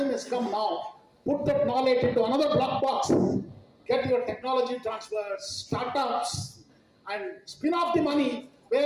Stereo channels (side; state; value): both; identical; correlation 1.00